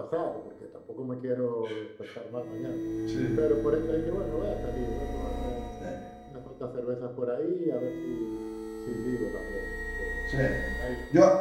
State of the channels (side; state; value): both; identical; correlation 1.00